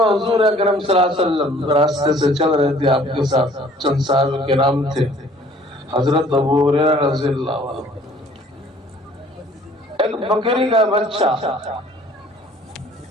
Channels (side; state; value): both; normal; correlation 0.54